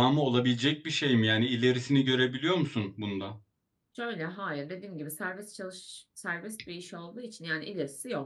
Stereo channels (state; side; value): identical; both; correlation 1.00